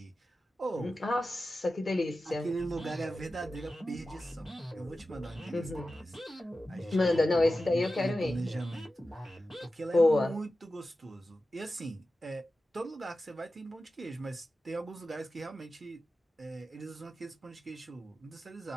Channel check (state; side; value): normal; both; correlation 0.93